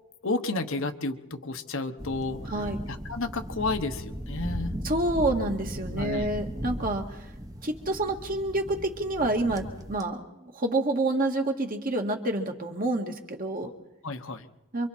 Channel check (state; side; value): normal; both; correlation 0.38